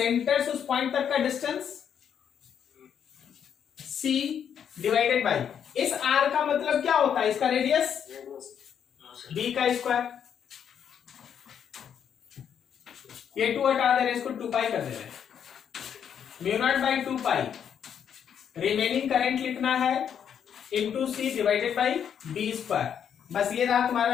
से उस पॉइंट तक का डिस्टेंस सी डिवाइडेड बाई इस आर का मतलब क्या होता है, इसका रेडियस बी का स्क्वायर। ये 2 हटा दे रहे, इसको 2 पाई कर दे रहे, mu naught by 2 pi remaining current लिखना है into C divided by B square. बस ये रहा तुम्हारा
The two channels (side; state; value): right; quieter; 8.3 dB